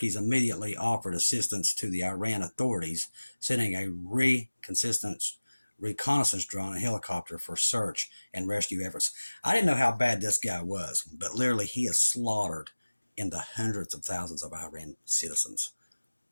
immediately offered assistance to the Iran authorities, sending a reconnaissance drone and helicopter for search and rescue efforts. I didn't know how bad this guy was, but literally he has slaughtered in the hundreds of thousands of Iran citizens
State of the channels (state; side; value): inverted; both; correlation -1.00